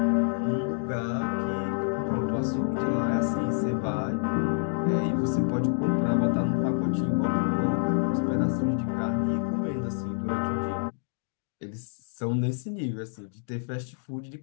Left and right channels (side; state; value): right; silent; digital silence